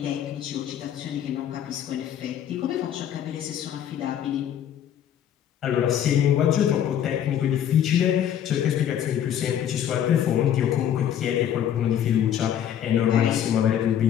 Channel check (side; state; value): right; quieter; 10.0 dB